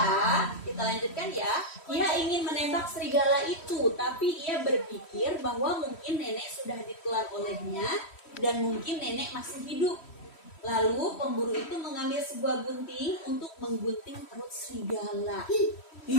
kita lanjutkan ya. Ia ingin menembak serigala itu, tapi ia berpikir bahwa mungkin nenek sudah ditelan olehnya dan mungkin nenek masih hidup. Lalu pemburu itu mengambil sebuah gunting untuk menggunting perut serigala.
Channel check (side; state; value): right; late; 3.1 ms